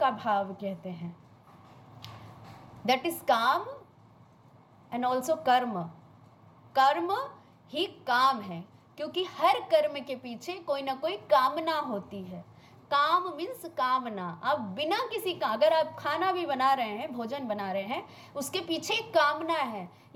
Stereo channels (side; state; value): both; identical; correlation 1.00